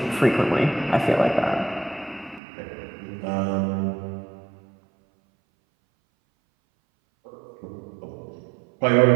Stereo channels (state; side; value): drops out; left; at 2.4 s